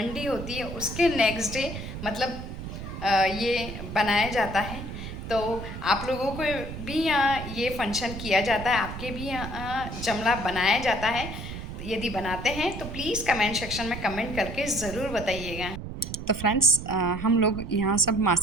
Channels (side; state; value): right; noise; rumble, 8 dB below the sound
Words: होती है उसके नेक्स्ट डे मतलब ये बनाया जाता है। तो आप लोगों को भी यहाँ ये फंक्शन किया जाता है, आपके भी यहाँ जमरा बनाया जाता है। यदि बनाते हैं तो प्लीज़ कमेंट सेक्शन में कमेंट करके ज़रूर बताइएगा। तो फ्रेंड्स, हम लोग यहाँ सब